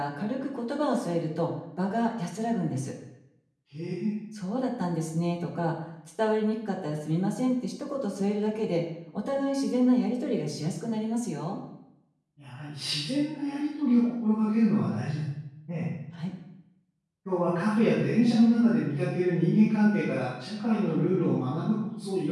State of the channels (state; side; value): identical; both; correlation 1.00